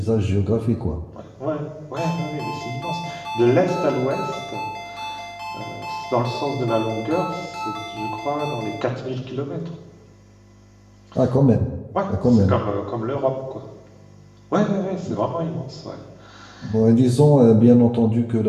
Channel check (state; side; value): identical; both; correlation 1.00